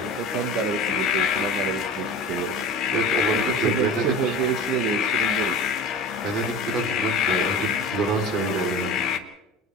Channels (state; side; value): normal; both; correlation 0.35